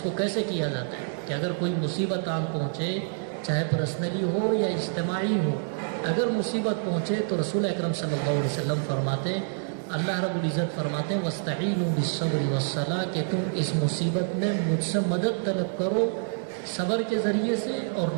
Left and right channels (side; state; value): left; silent; digital silence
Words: کو کیسے کیا جاتا ہے. کہ اگر کوئی مصیبت آن پہنچے چاہے پرسنلی ہو یا اجتماعی ہو، اگر مصیبت پہنچے تو رسول اکرم صلی اللہ علیہ وسلم فرماتے ہیں، اللہ رب العزت فرماتے ہیں وَاسْتَعِينُوا بِالصَّبْرِ وَالصَّلَاةِ کہ تم اس مصیبت میں مجھ سے مدد طلب کرو صبر کے ذریعے سے اور